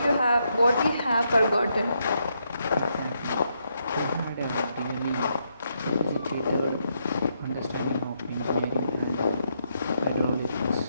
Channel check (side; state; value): both; inverted; correlation -0.79